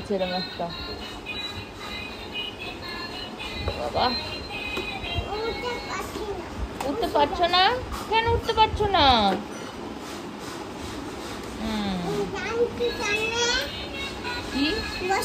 এরকম একটা। বাবা উঠতে পারছো না কেন? উঠতে পারছো না? কি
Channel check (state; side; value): identical; both; correlation 1.00